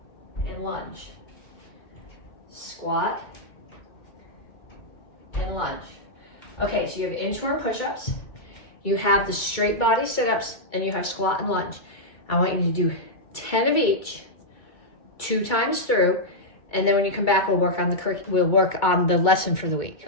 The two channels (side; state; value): right; late; 2.2 ms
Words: and lunge. Squat and lunge. Okay, so you have inchworm push-ups, you have the straight body sit-ups, and you have squat and lunge. I want you to do 10 of each, 2 times through, and then when you come back, we'll work on the lesson for the week.